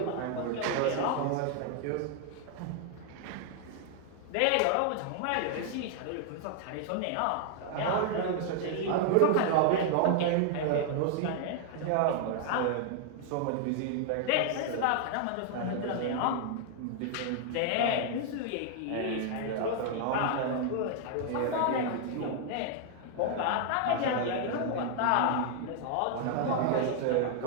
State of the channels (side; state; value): both; different; correlation 0.00